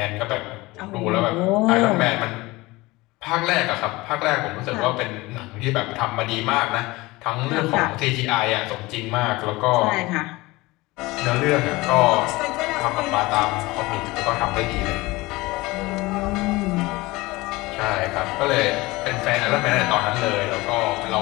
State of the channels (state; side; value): quieter; right; 21.3 dB